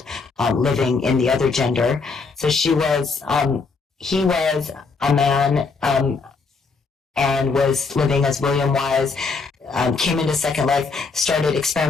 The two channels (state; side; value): quieter; right; 4.5 dB